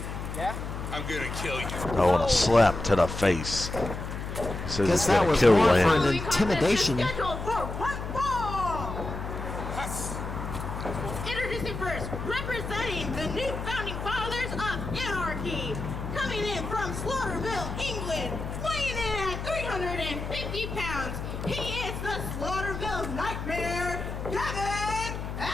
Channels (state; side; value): noise; left; hum, 6 dB below the sound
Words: Yeah? I'm gonna kill you. I want a slap to the face. He says Guess he's that gonna was kill more for Lander. an intimidation. Scheduled for one fall. Introducing first, representing the new founding fathers of anarchy, coming in from Slaughterville, England, weighing in at 350 pounds. He is the Slaughterville Nightmare, Gavin